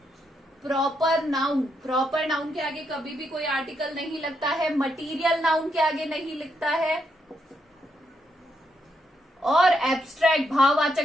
proper noun, proper noun के आगे कभी भी कोई आर्टिकल नहीं लगता है। मटीरियल नाउन के आगे नहीं लिखता है, और एब्स्ट्रैक्ट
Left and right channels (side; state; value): both; normal; correlation 0.79